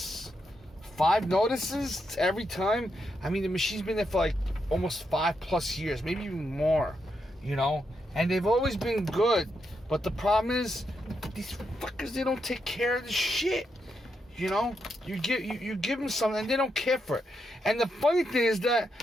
5 notices every time? I mean, the machine's been there for like almost 5+ years, maybe even more, you know? And they've always been good. But the problem is, these fuckers, they don't take care of the shit. You know, you give them something and they don't care for it. And the funny thing is that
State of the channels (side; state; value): both; normal; correlation 0.82